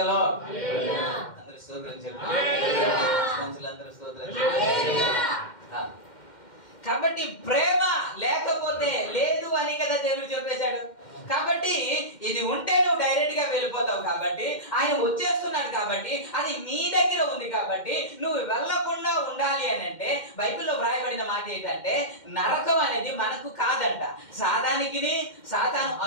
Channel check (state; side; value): late; right; 2.1 ms